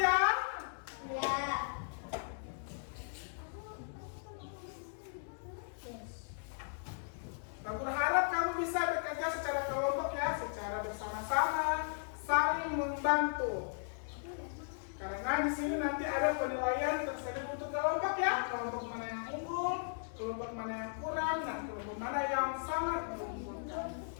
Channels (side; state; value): right; silent; digital silence